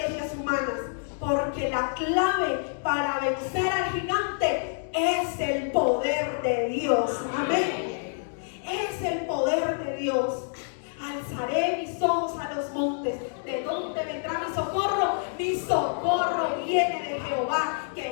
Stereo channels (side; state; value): right; silent; digital silence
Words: humanas, porque la clave para vencer al gigante es el poder de Dios. Amén. Es el poder de Dios. Alzaré mis ojos a los montes. ¿De dónde vendrá mi socorro? Mi socorro viene de Jehová,